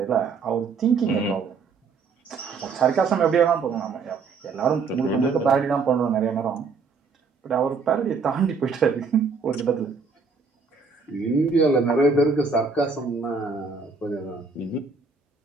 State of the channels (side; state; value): left; quieter; 4.9 dB